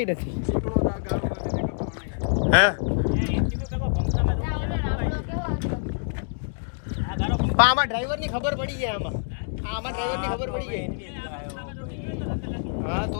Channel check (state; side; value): silent; right; digital silence